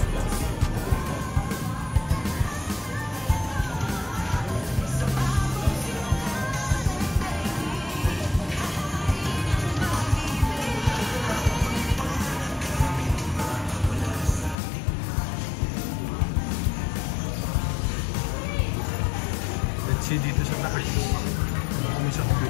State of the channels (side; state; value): right; drops out; at 14.6 s